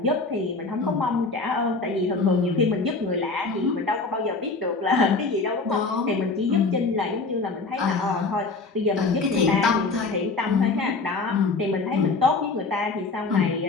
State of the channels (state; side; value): quieter; right; 3.9 dB